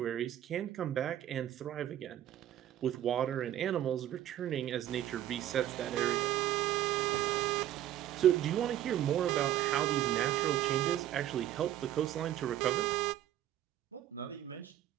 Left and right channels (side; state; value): left; quieter; 12.2 dB